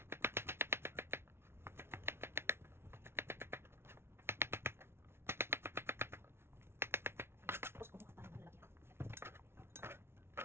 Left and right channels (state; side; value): late; left; 0.12 ms